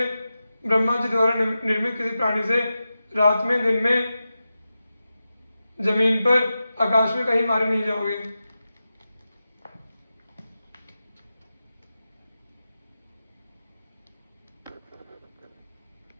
ब्रह्मा जी द्वारा निर्मित किसी प्राणी से रात में, दिन में, जमीन पर, आकाश में कहीं मारे नहीं जाओगे।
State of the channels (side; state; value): both; inverted; correlation -0.92